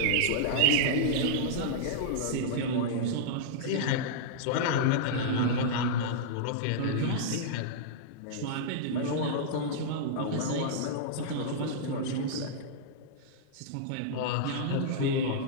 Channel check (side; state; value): both; different; correlation -0.02